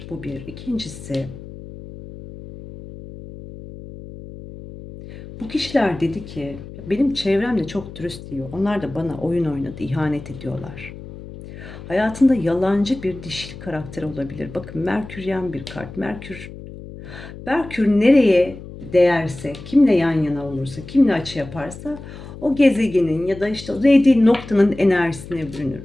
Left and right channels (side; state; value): left; noise; hum, 14 dB below the sound